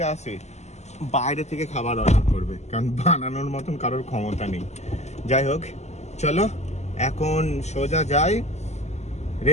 আসে বাইরে থেকে খাবার অর্ডার করবে, কারণ বানানোর মতন কারোর ক্ষমতা নেই। যাই হোক চলো এখন সোজা যাই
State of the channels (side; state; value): right; late; 0.33 ms